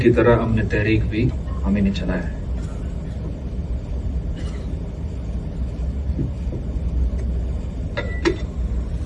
तरह हमने तहरीक भी हमें नहीं चलाया है।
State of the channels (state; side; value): identical; both; correlation 1.00